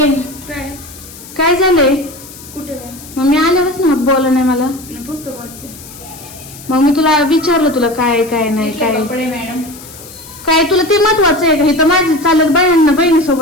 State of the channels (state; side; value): noise; left; hiss, 17 dB below the sound